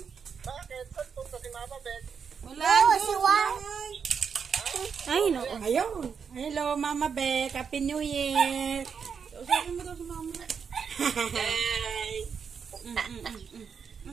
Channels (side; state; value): left; quieter; 6.5 dB